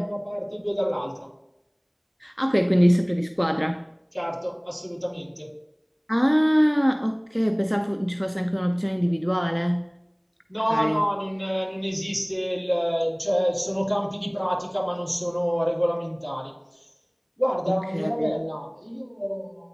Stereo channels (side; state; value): both; identical; correlation 1.00